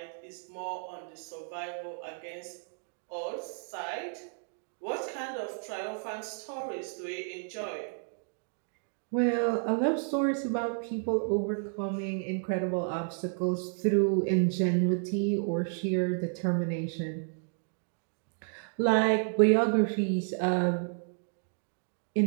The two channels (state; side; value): silent; left; 57 dB below the other